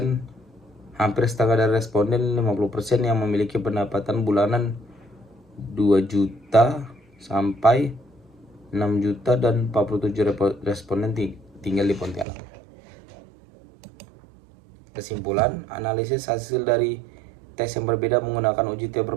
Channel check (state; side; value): drops out; left; at 12.2 s